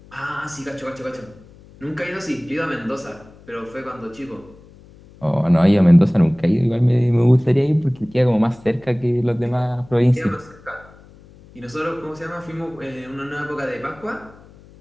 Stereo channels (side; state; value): left; noise; hum, 24 dB below the sound